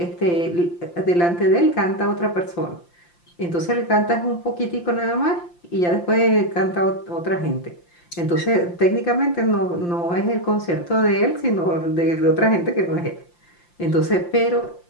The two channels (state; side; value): late; right; 5.8 ms